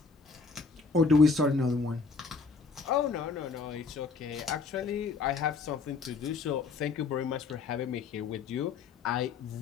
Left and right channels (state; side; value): quieter; right; 4.6 dB